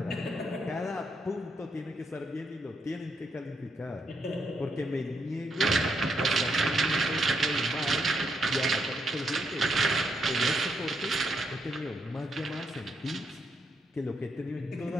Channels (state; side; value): normal; both; correlation 0.78